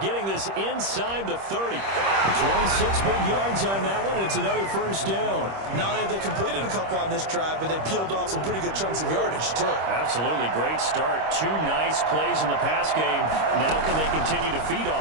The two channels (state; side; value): late; left; 26 ms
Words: getting this inside the 30. 26 big yards on that one. It's another first down. Not only have they completed a couple on this drive, but they peeled off some pretty good chunks of yardage, too. Absolutely. Great start. 2 nice plays in the pass game. Now can they continue to feed